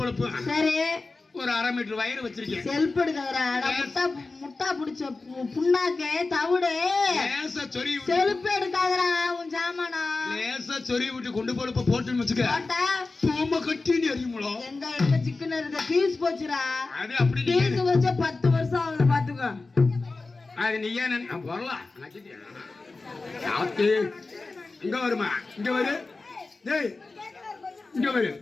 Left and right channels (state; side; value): quieter; right; 3.6 dB